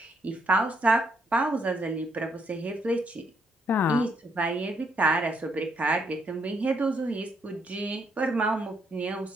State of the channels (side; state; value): both; normal; correlation 0.74